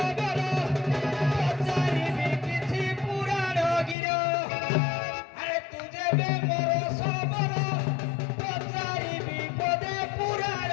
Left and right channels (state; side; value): drops out; right; at 4.0 s